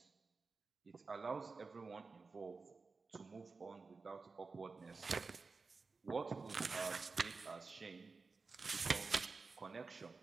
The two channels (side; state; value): left; quieter; 4.2 dB